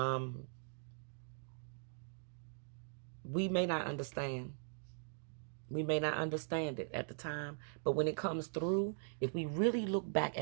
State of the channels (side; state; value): left; silent; digital silence